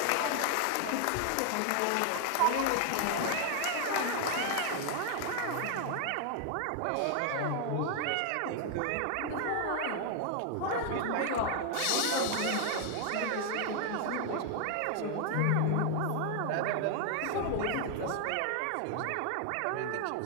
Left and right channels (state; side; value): different; both; correlation 0.00